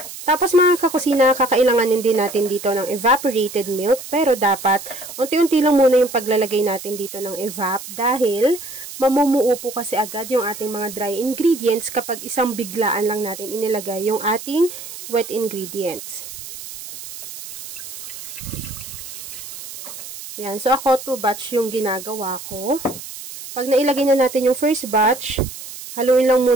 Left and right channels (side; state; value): right; noise; hiss, 12 dB below the sound